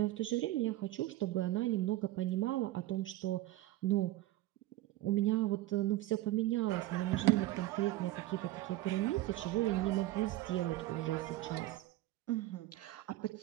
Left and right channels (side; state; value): left; quieter; 16.0 dB